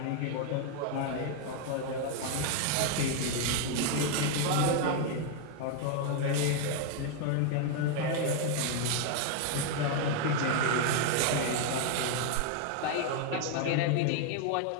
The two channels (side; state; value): both; different; correlation 0.00